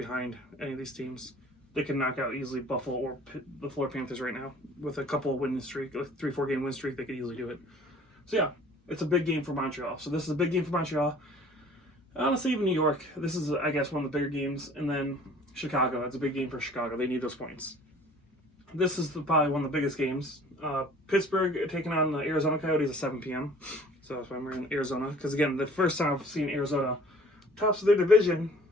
any of these teams. They can knock out easily Buffalo or the Florida Panthers right now with a couple of winning streak, a 3-4 game win streak. They could easily do it. So yeah, it's a big game for Montreal. So this is a big game for Montreal. Honestly, even New York, this is, I guess, one of the bigger games. And then Chicago, it's a big game for Chicago. They need those points. This is probably one of the biggest games. Pittsburgh taking on the Arizona Coyotes at 7 p.m. So that's why I'm in Arizona. Because, again, the first time I've seen Arizona tops of their division.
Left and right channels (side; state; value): both; normal; correlation 0.51